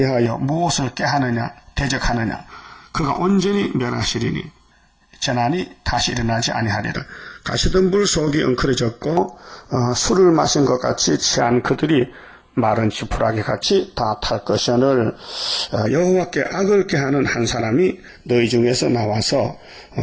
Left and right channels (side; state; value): both; identical; correlation 1.00